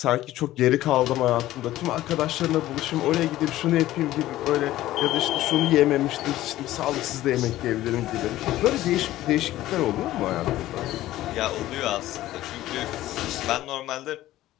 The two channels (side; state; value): right; quieter; 15.1 dB